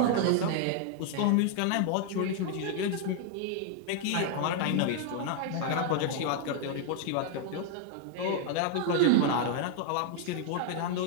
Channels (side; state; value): both; different; correlation 0.00